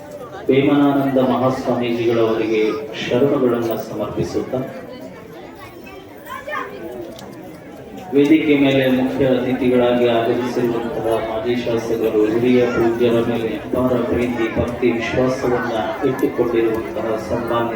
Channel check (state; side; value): identical; both; correlation 1.00